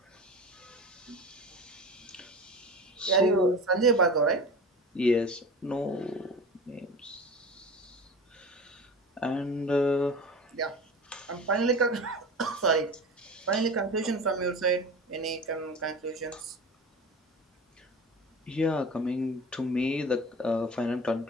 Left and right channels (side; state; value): both; normal; correlation 0.34